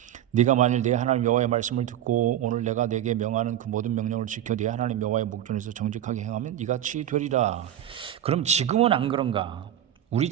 네가 만일 내 하나님 여호와의 말씀을 듣고 오늘 내가 네게 명하는 그 모든 명령을 지켜 네 하나님 여호와의 목전에서 정직하게 행하면 이같이 되리라. 그럼 지금은 안 그런가? 우리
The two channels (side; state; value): left; quieter; 11.5 dB